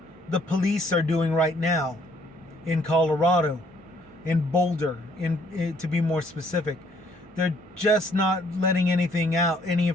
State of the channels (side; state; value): both; normal; correlation 0.64